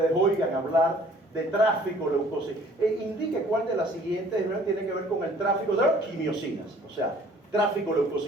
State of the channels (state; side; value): normal; both; correlation 0.55